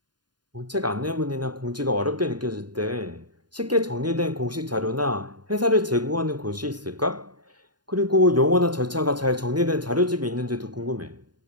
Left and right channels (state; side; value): late; left; 0.70 ms